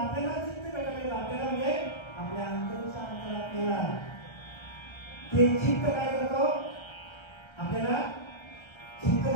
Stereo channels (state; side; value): late; right; 1.3 ms